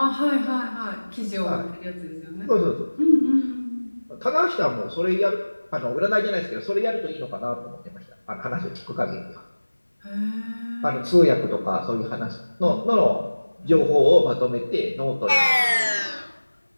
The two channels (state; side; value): inverted; both; correlation -1.00